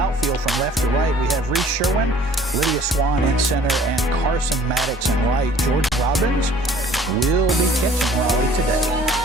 outfield from left to right, we have Reese Sherwin, Lydia Swan in center, and Carson Maddox in right. Jordan Robbins will be catching Raleigh today.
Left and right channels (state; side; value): normal; both; correlation 0.53